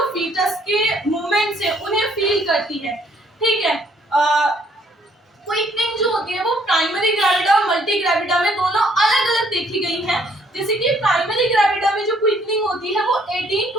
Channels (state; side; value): normal; both; correlation 0.65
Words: फीटस के मूवमेंट्स है उन्हें फील करती है। ठीक है, क्विकनिंग जो होती है वो प्राइमरी ग्रेविडा और मल्टी ग्रेविडा में दोनों अलग अलग देखी गई है। जैसे कि प्राइमरी ग्रेविडा में जो क्विकनिंग होती है वो 18